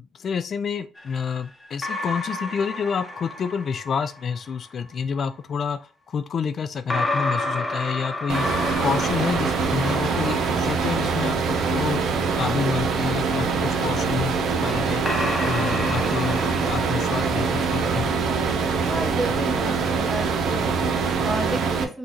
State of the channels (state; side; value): normal; both; correlation 0.65